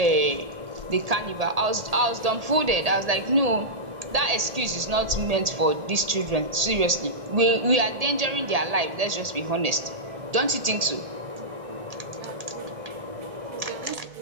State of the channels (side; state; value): left; late; 1.8 ms